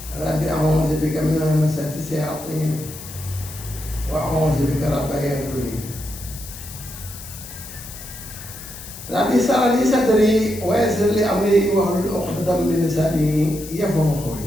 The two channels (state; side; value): noise; left; hiss, 13 dB below the sound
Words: رب أعوذ بك من همزات الشياطين وأعوذ بك رب أن يحضرون رب اشرح لي صدري ويسر لي أمري واحلل عقدة من لساني يفقهوا